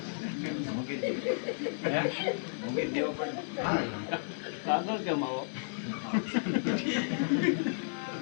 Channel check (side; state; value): right; silent; digital silence